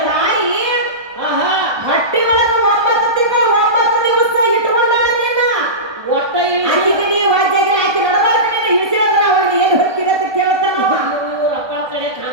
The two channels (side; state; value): left; late; 1.2 ms